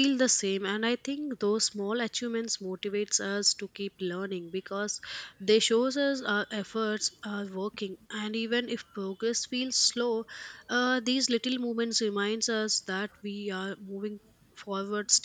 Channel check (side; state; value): both; identical; correlation 1.00